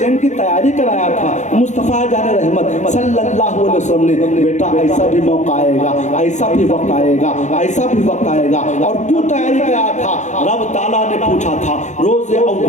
کی تیاری کرایا تھا مصطفیٰ جان رحمت صلی اللہ علیہ وسلم نے، بیٹا ایسا بھی موقع آئے گا، ایسا بھی وقت آئے گا، ایسا بھی وقت آئے گا۔ اور کیوں تیاری کرایا تھا؟ رب تعالیٰ نے پوچھا تھا روز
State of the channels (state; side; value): late; right; 0.35 ms